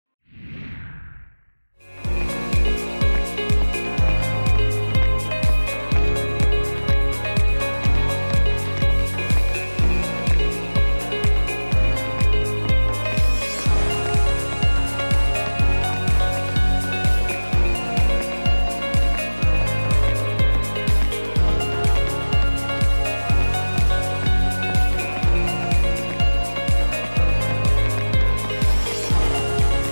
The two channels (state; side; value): inverted; both; correlation -1.00